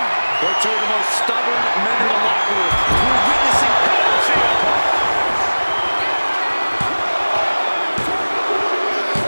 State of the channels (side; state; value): both; inverted; correlation -1.00